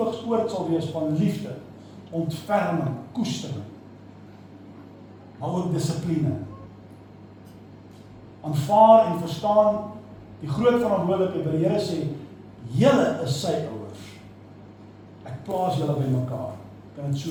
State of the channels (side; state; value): both; identical; correlation 1.00